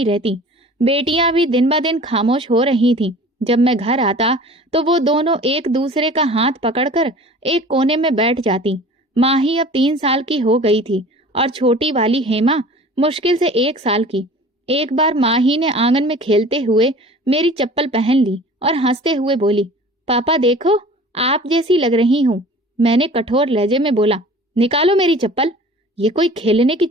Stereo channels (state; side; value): normal; both; correlation 0.44